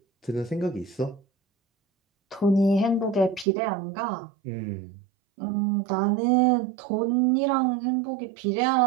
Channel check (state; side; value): drops out; left; at 3.5 s